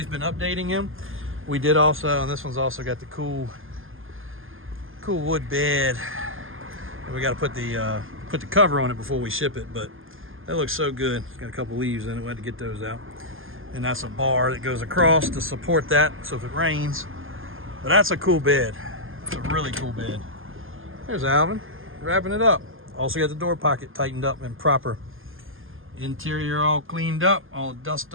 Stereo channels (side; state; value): left; late; 0.59 ms